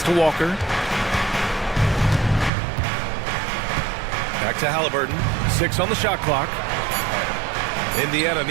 to Walker. Back to Halliburton, 6 on the shot clock. Indiana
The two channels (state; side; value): drops out; left; at 2.5 s